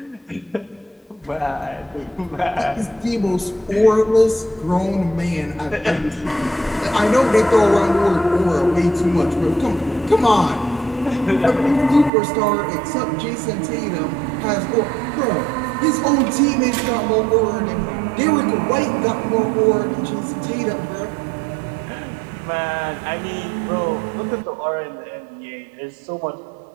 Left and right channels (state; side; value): drops out; left; at 12.1 s